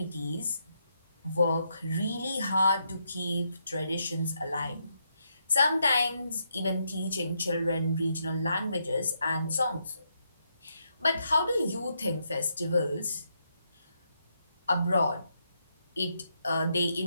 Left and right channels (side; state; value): both; inverted; correlation -0.79